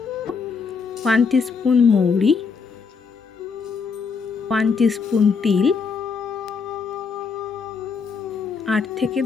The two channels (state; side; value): quieter; right; 5.3 dB